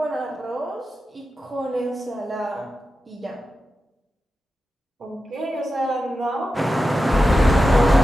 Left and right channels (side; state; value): both; normal; correlation 0.92